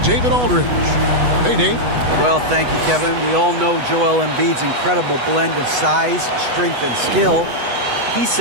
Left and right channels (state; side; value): late; left; 8.1 ms